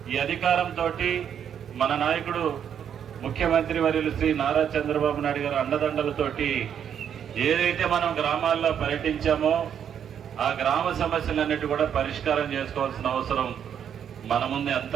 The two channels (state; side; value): quieter; left; 8.7 dB